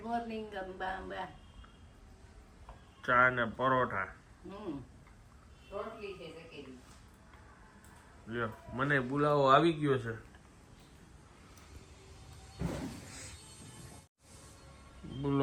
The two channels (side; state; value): both; identical; correlation 1.00